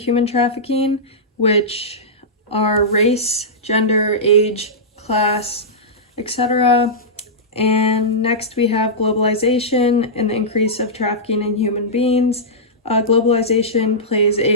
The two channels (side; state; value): both; normal; correlation -0.14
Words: trafficking, which are race, gender, age, class, etc. And next we have globalization and the increase of trafficking in human beings. Globalization plays